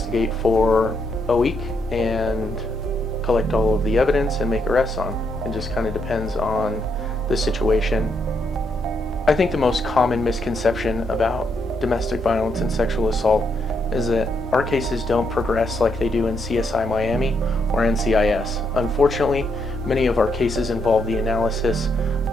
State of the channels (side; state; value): both; normal; correlation 0.77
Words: for a week and collect all of the evidence and make arrests on. It just kind of depends on the situation. I think the most common misconception about domestic violence and sexual assault is that our cases don't progress like they do in CSI Miami or NCIS. Unfortunately, many of our cases involve the analysis